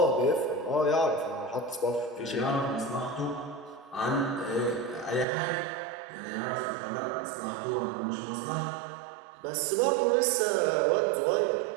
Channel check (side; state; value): left; drops out; at 5.2 s